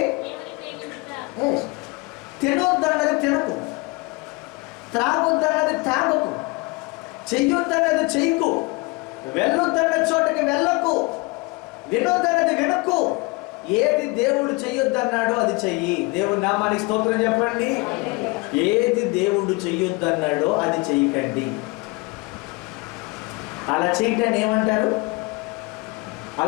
తినొద్దన్నది తినకు, త్రాగొద్దన్నది త్రాగకు, చెయ్యొద్దన్నది చెయ్యకు, వెళ్ళొద్దన్న చోటకి వెళ్ళకు, వినొద్దన్నది వినకు. ఏది దేవుడు చెయ్యొద్దన్నాడో అది చెయ్యి. దేవుడి నామానికి స్తోత్రం చెప్పండి. ఏది దేవుడు చెయ్యొద్దన్నాడో అది చెయ్యకండి. అలా చేయటాన్ని ఏమంటారు?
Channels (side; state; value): right; quieter; 26.6 dB